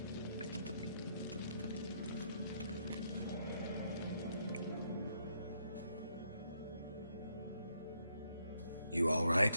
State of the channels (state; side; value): inverted; both; correlation -0.74